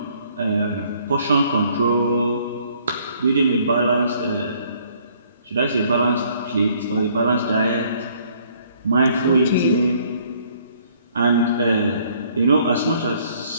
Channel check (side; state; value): both; inverted; correlation -0.62